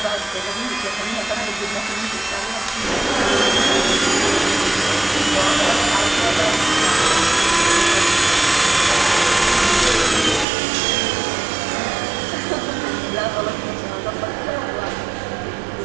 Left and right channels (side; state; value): left; drops out; at 10.5 s